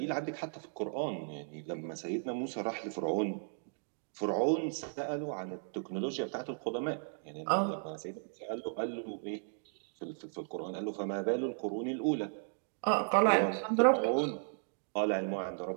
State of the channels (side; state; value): left; silent; digital silence